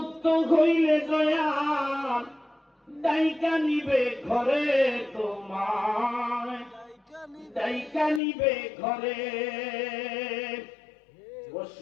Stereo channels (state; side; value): drops out; right; at 8.2 s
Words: হইলে দয়া ডাইকা নিবে ঘরে তোমায়, ডাইকা নিবে ঘরে